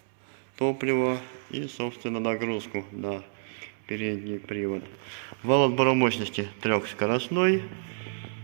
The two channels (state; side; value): silent; left; 58 dB below the other